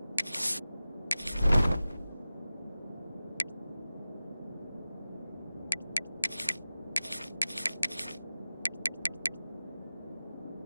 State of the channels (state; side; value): inverted; both; correlation -0.96